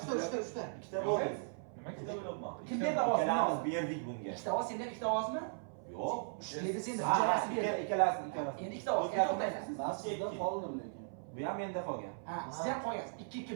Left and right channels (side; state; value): left; silent; 53 dB below the other